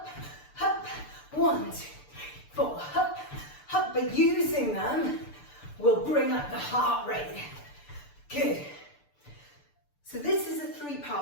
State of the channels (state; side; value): late; right; 6.8 ms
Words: up, 1, 2, 4, up, up. But using them will bring up the heart rate. Good. So this is a